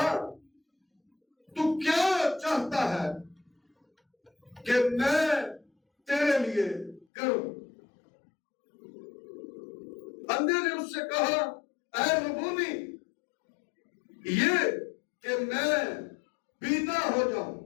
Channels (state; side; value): drops out; right; at 7.1 s